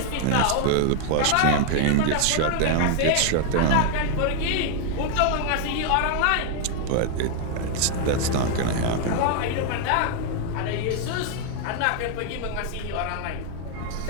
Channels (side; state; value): both; different; correlation 0.00